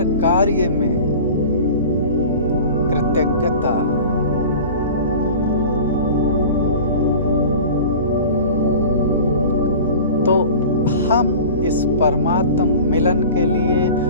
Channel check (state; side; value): inverted; both; correlation -0.38